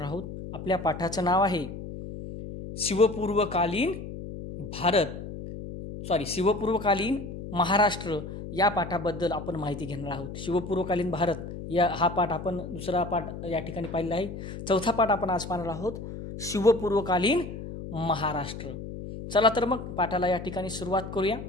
आहोत. आपल्या पाठाचं नाव आहे शिवपूर्वकालीन महाराष्ट्र. या पाठाबद्दल आपण माहिती घेणार आहोत. शिवपूर्वकालीन भारत हा पाठ आपण दुसरा पाठ या ठिकाणी पाहिलेला आहे. चौथा पाठ आपण आज पाहणार आहोत, शिवपूर्वकालीन महाराष्ट्र. चला तर मग पाठाला या ठिकाणी सुरुवात करूया.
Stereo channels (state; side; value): noise; left; hum, 9 dB below the sound